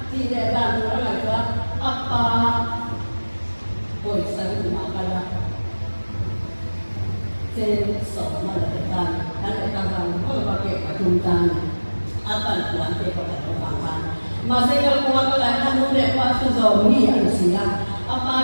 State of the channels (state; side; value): inverted; both; correlation -1.00